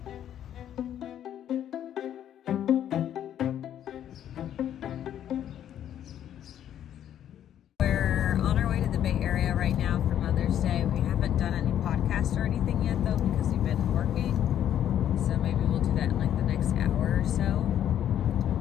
We're on our way to the Bay Area right now for Mother's Day. We haven't done any podcasts or anything yet though because we've been working. So maybe we'll do that in like the next hour or so.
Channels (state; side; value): quieter; right; 10.5 dB